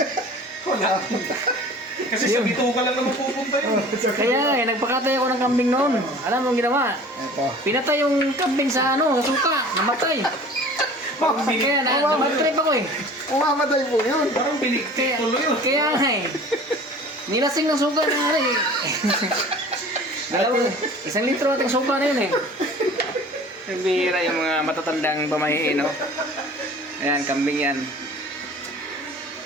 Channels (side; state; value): both; normal; correlation 0.44